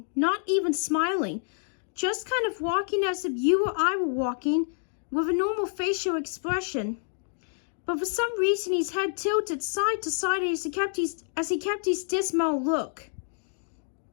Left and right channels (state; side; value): silent; right; digital silence